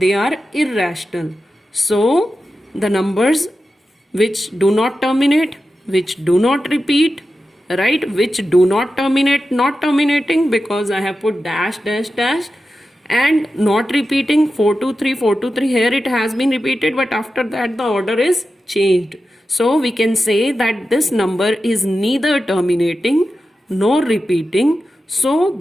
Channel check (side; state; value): both; normal; correlation 0.91